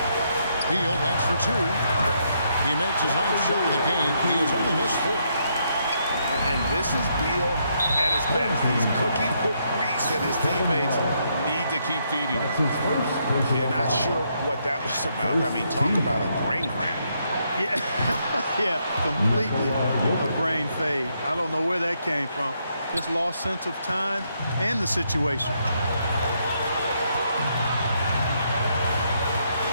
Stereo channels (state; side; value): inverted; both; correlation -0.76